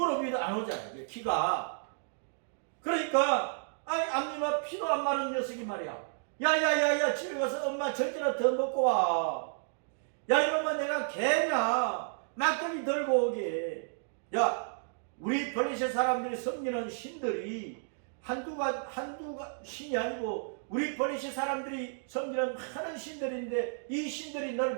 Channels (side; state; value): left; silent; digital silence